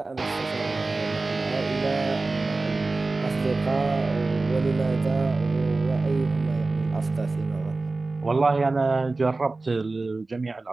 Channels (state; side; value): quieter; left; 3.4 dB